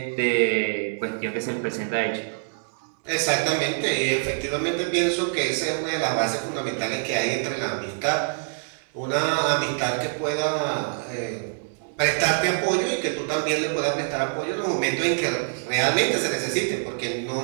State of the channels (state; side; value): silent; left; digital silence